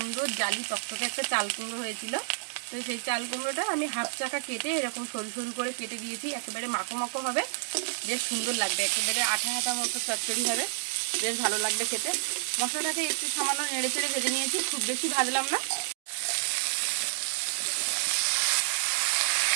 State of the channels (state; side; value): silent; left; digital silence